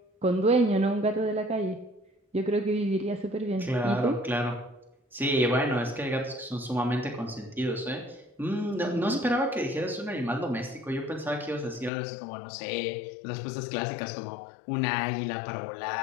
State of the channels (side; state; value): right; drops out; at 11.9 s